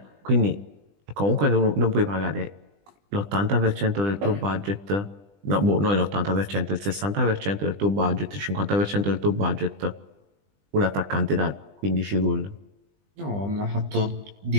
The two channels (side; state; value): left; late; 20 ms